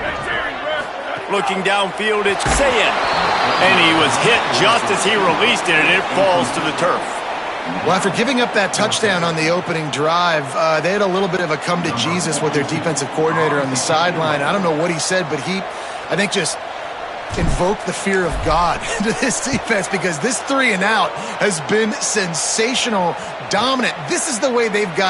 Looking downfield, it's Zayn. And he was hit just as he released it, and it falls to the turf. Well, after giving up that touchdown on the opening drive, they had a little bit of a come to Jesus with their defensive coordinator on the sideline. I don't know what he said, but he, I think, just invoked the fear of God into this defense because this 3 and out has been sensational, dominant. This is the way they've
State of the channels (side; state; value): both; identical; correlation 1.00